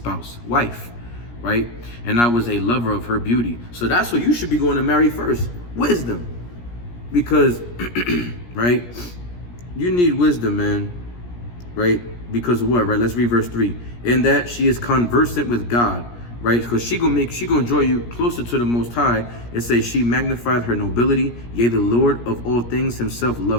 wife, right? And I was a lover of her beauty. So that's what you should be going to marry first, wisdom. Because, right, you need wisdom, man, right? Because of what, right? Let's read verse 3. In that she is conversant with God, right? Because she gonna draw you closer to the Most High. It says she magnified her nobility, yea, the Lord of all things himself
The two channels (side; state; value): right; late; 17 ms